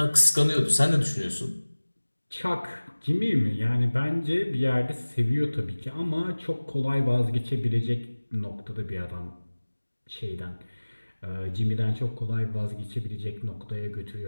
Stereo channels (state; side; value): inverted; both; correlation -1.00